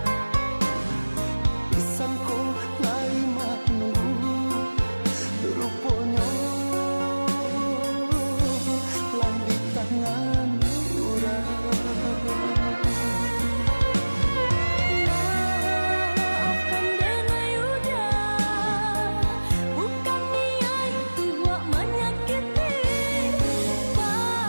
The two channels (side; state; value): both; inverted; correlation -1.00